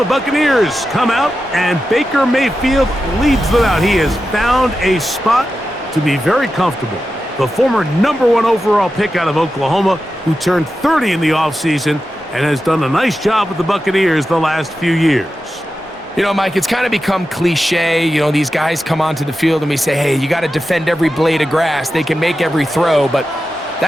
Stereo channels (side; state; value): both; normal; correlation 0.91